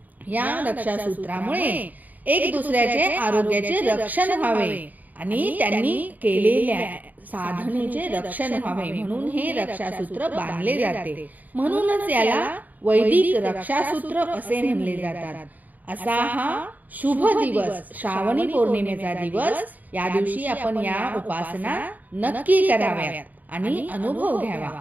या रक्षासूत्रामुळे एक दुसऱ्याचे आरोग्याचे रक्षण व्हावे आणि त्यांनी केलेल्या साधनेचे रक्षण व्हावे म्हणून हे रक्षासूत्र बांधले जाते। म्हणूनच याला वैदिक रक्षासूत्र असे म्हणले जातात। असा हा शुभ दिवस श्रावणी पौर्णिमेचा दिवस। या दिवशी आपण या उपासना नक्की कराव्यात आणि अनुभव घ्यावा।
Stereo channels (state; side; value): late; left; 0.081 ms